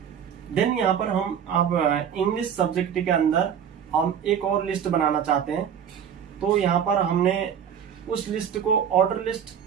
देन यहाँ पर हम अब इंग्लिश सब्जेक्ट के अंदर हम एक और लिस्ट बनाना चाहते हैं। तो यहाँ पर हमने उस लिस्ट को ऑर्डर लिस्ट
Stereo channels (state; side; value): quieter; left; 8.3 dB